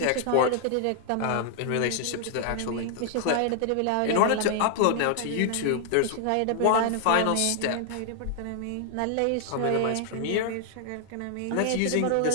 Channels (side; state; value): both; different; correlation 0.00